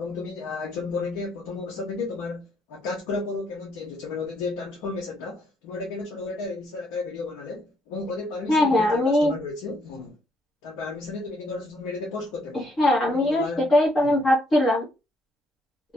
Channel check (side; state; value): both; normal; correlation 0.71